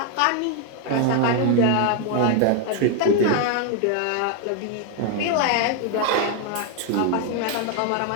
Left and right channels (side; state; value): both; different; correlation 0.00